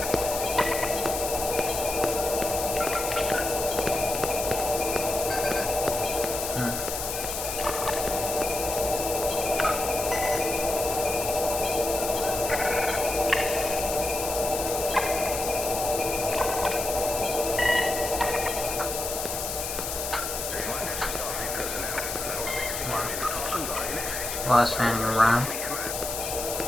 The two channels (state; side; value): noise; left; hiss, 4 dB below the sound